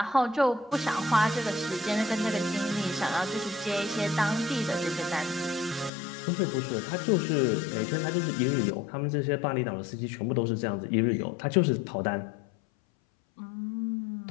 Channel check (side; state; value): right; drops out; at 5.9 s